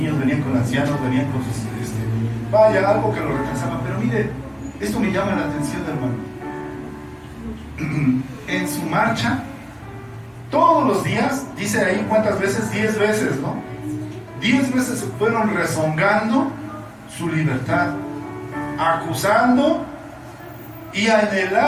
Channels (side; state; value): both; identical; correlation 1.00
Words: venían con ancianos, venían con sus... vaya, algo que lo retrasaba. Pero mire, esto me llama la atención, hermano. En su marcha, todos los días, dice ahí cuántas veces, 10 veces, ¿no? 10 veces se fueron rezongando su libertad, acusando y